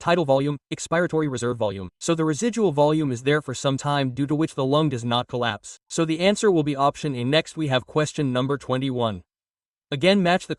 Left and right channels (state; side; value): identical; both; correlation 1.00